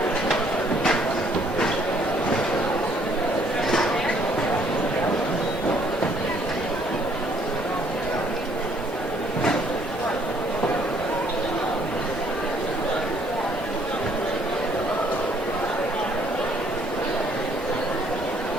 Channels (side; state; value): both; normal; correlation 0.64